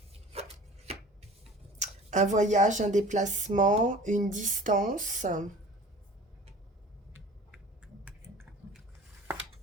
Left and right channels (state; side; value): normal; both; correlation 0.43